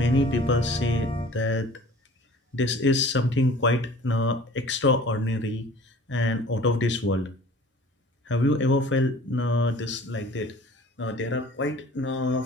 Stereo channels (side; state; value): both; normal; correlation 0.46